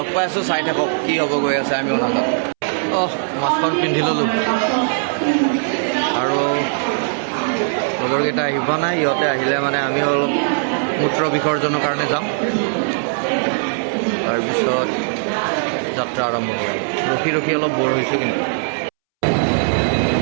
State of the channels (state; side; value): silent; left; 66 dB below the other